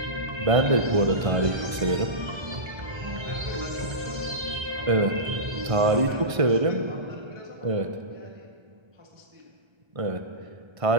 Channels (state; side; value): late; left; 1.5 ms